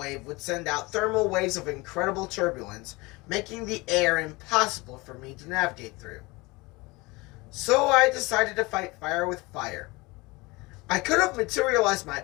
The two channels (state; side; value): quieter; right; 23.8 dB